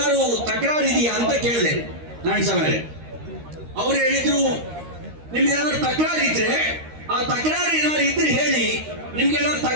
ತಕರಾರು ಇದೆಯಾ ಅಂತ ಕೇಳಿದೆ ನಾನು ಸಮಯ. ಅವ್ರು ಹೇಳಿದ್ರು, ನಿಮ್ಗೆ ಏನಾದ್ರು ತಕರಾರು ಇದ್ರೆ ಆ ತಕರಾರು ಏನಾದ್ರು ಇದ್ರೆ ಹೇಳಿ, ನಿಮ್ಗೆ ಏನಾದ್ರು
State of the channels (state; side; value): late; left; 13 ms